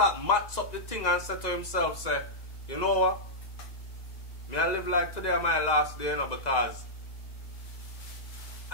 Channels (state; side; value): late; right; 1.9 ms